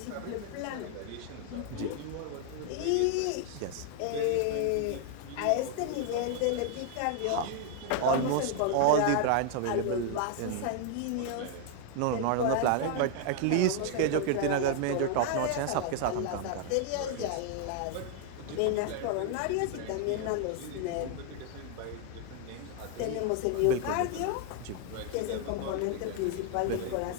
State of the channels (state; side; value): different; both; correlation 0.00